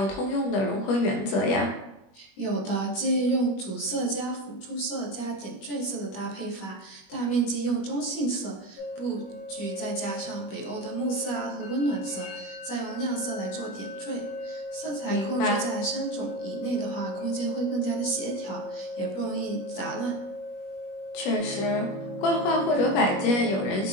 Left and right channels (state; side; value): late; right; 21 ms